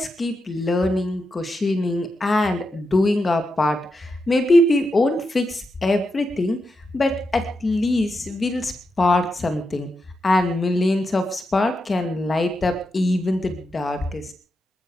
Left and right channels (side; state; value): both; normal; correlation 0.86